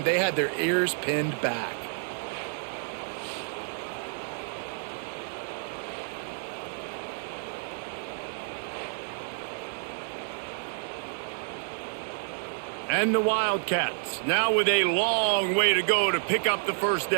they had their ears pinned back. And the Wildcats, now with a long way to go to pick up the 1st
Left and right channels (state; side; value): silent; left; digital silence